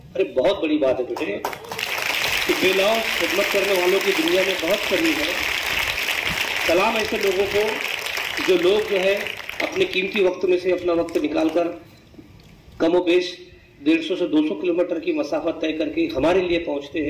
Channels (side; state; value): both; identical; correlation 1.00